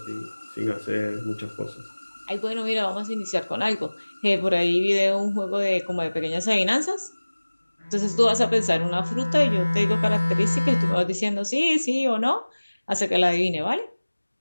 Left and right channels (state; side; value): inverted; both; correlation -1.00